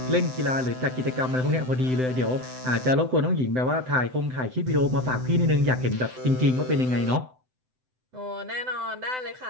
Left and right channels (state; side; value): late; left; 7.9 ms